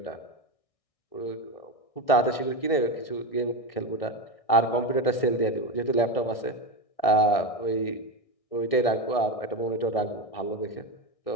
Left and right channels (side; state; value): right; late; 1.6 ms